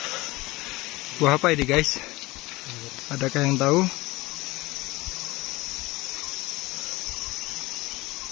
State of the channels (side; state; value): right; quieter; 20.9 dB